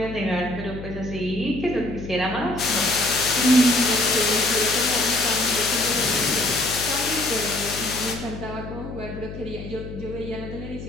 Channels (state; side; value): noise; left; hum, 10 dB below the sound